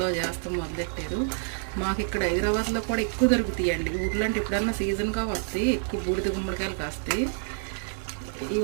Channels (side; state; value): left; silent; 60 dB below the other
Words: చేస్తాం మొదలెట్టారు. మాకు ఇక్కడ హైదరాబాద్లో కూడా ఎక్కువ దొరుకుతాయండి. ఊర్లో అంటే ఎప్పుడన్నా సీజన్గా వస్తాయి, ఎక్కువ బూడిద గుమ్మడికాయలు కాస్తాయి.